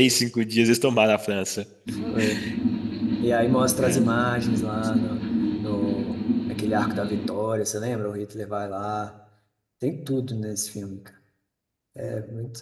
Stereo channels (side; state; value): both; identical; correlation 1.00